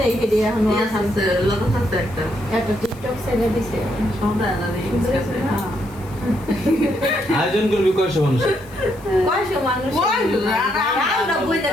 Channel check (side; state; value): left; noise; hiss, 25 dB below the sound